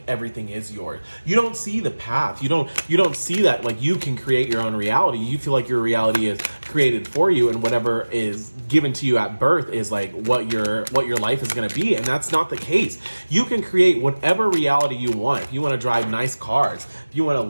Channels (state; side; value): inverted; both; correlation -1.00